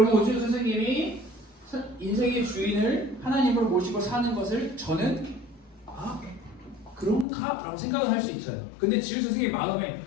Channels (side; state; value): right; drops out; at 7.2 s